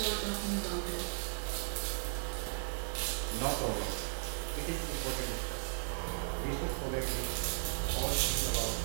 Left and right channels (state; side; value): silent; left; digital silence